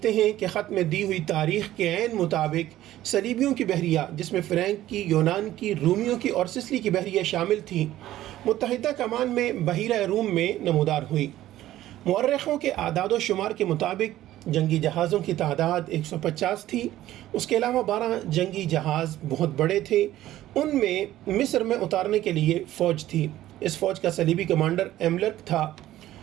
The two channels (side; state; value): left; quieter; 14.1 dB